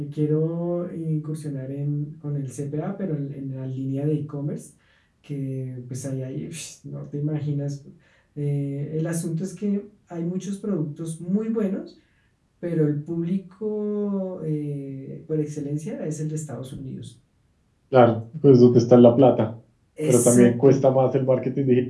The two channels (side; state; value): both; identical; correlation 1.00